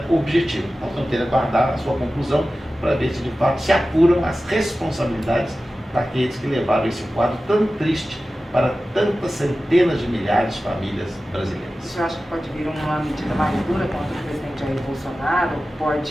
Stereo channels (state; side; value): normal; both; correlation 0.95